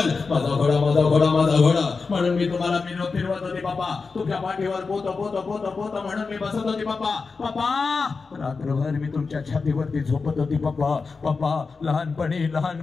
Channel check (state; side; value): quieter; right; 4.6 dB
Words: माझा घोडा माझा घोडा माझा घोडा म्हणून मी तुम्हाला फिरवत होती. पप्पा तुमच्या पाठीवर पोत म्हणून मी बसत होती. पप्पा रात्रभर मी तुमच्या छातीवरती झोपत होती. पप्पा